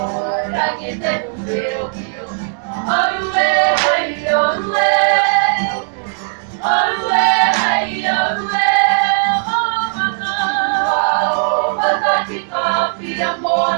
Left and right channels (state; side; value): silent; left; digital silence